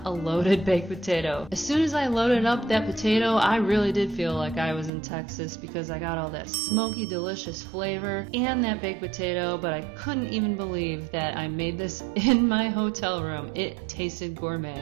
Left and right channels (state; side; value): drops out; left; at 4.9 s